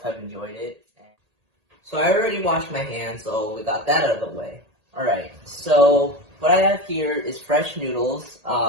have enjoyed it. So I already washed my hands, so we got that out of the way. Alright, so what I have here is fresh noodles.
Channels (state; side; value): late; left; 1.8 ms